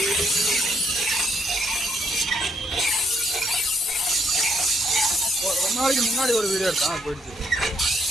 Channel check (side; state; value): both; normal; correlation 0.72